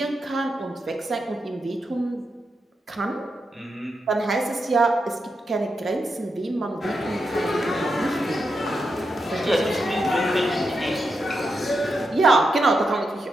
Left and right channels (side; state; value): both; normal; correlation 0.85